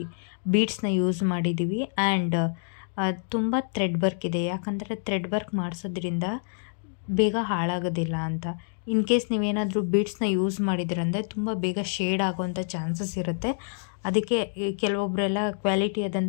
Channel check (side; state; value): right; silent; digital silence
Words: ಬೀಡ್ಸ್ನ ಯೂಸ್ ಮಾಡಿದ್ದೀವಿ ಆ್ಯಂಡ್ ತುಂಬ ಥ್ರೆಡ್ ವರ್ಕ್ ಇದೆ. ಯಾಕಂದರೆ ಥ್ರೆಡ್ ವರ್ಕ್ ಮಾಡಿಸೋದ್ರಿಂದ ಬೇಗ ಹಾಳಾಗೋದಿಲ್ಲ ಅಂತ. ಇನ್ ಕೇಸ್ ನೀವೇನಾದರೂ ಬೀಡ್ಸ್ನ ಯೂಸ್ ಮಾಡಿದ್ರಂದರೆ ತುಂಬ ಬೇಗ ಶೇಡ್ ಆಗೋವಂಥ ಚಾನ್ಸಸ್ ಇರುತ್ತೆ. ಅದಕ್ಕೆ ಕೆಲವೊಬ್ಬರೆಲ್ಲ ಕ್ವಾಲಿಟಿ